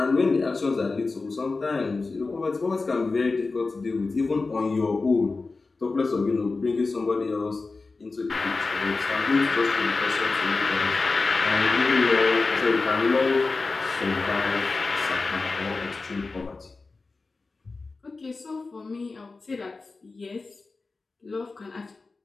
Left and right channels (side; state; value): right; quieter; 3.8 dB